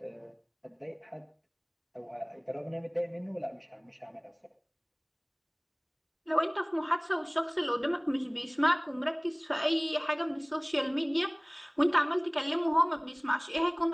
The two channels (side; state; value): both; identical; correlation 1.00